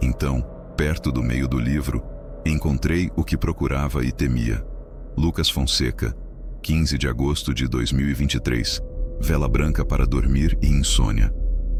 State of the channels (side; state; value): both; identical; correlation 1.00